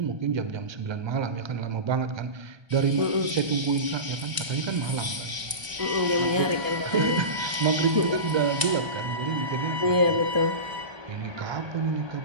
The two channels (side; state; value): left; late; 1.2 ms